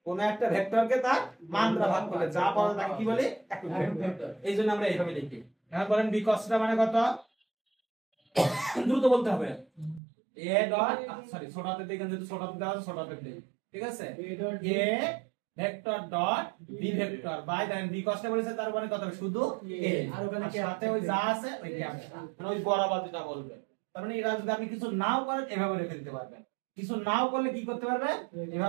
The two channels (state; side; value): drops out; left; at 10.0 s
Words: কোন একটা ভেক্টরকে তার মান দ্বারা ভাগ করলে যা পাওয়া যায় তাকে কি বলে? একক ভেক্টর। এই জন্য আমরা এইভাবে লিখি। এখন বলেন বি cos থিটা মানে কত? দ্রুত বলতে হবে। এ ডট সরি ছোট হাতে দেখেন, যেহেতু ছোট হাতে দেওয়া আছে ছোট হাতে দেই, ঠিক আছে? A vector dot B vector by then B cos theta বলেছে, তার মানে কত হবে? শুধু এ, আর ওখানে সাথে ওই যা আছে ওই ক্যাপটা, মানে ওই বরাবর যেটা বলবে। তার মানে এরা যদি আপনি কিছু নাও করেন এভাবে রেখে দিতে পারবেন, কিছু নাও করলে কি করতে পারবে?